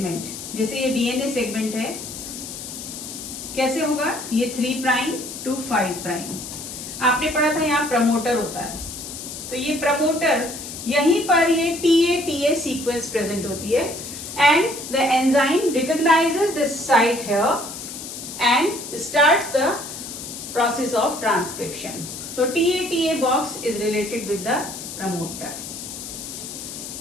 जैसे ये DNA segment है, कैसे होगा? ये 3 prime to 5 prime. आपने पढ़ा था यहाँ प्रमोटर होता है, तो ये प्रमोटर यहीं पर ये TATA sequence present होती है, and the enzyme recognizes this site here and starts the process of transcription. So TATA box is related with the promoter.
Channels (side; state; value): left; noise; hiss, 9 dB below the sound